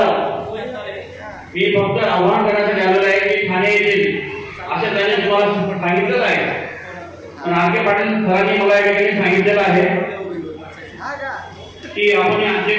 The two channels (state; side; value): identical; both; correlation 1.00